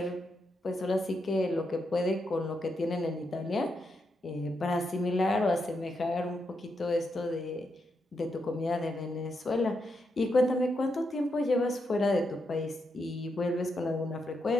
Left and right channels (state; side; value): normal; both; correlation 0.83